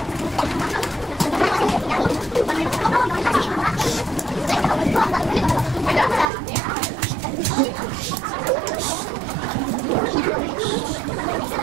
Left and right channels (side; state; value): left; drops out; at 6.3 s